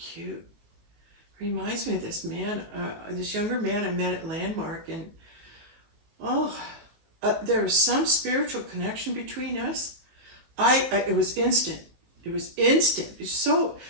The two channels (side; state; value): left; late; 19 ms